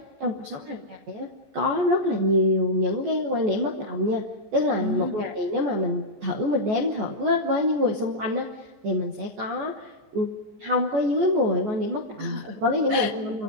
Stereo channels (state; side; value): late; left; 14 ms